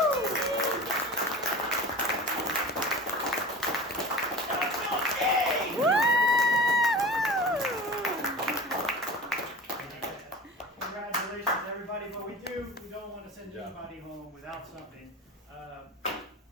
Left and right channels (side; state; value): both; normal; correlation 0.34